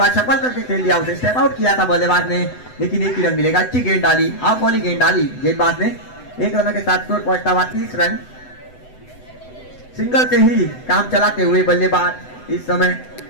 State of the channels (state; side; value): late; right; 7.9 ms